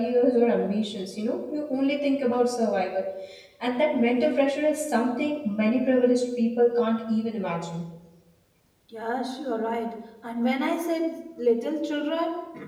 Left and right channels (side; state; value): both; identical; correlation 1.00